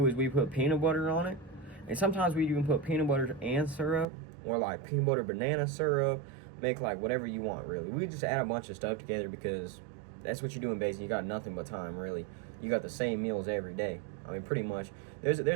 is we put peanut butter on it, and sometimes we even put peanut butter and syrup, or like peanut butter banana syrup, make like whatever you want, really. We just add a bunch of stuff together because that's what you do in basic. You got nothing but time, really. You got the same meals every day. I mean, pretty much. There's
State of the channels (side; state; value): left; drops out; at 4.0 s